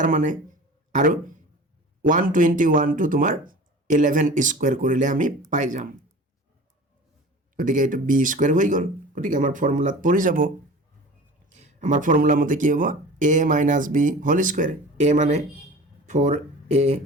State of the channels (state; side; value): normal; both; correlation 0.39